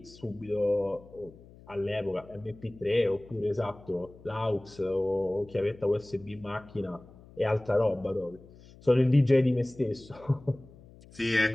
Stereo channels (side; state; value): left; noise; hum, 22 dB below the sound